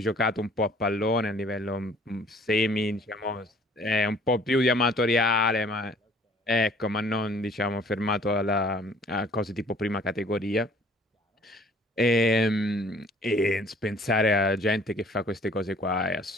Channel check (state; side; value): normal; both; correlation 0.55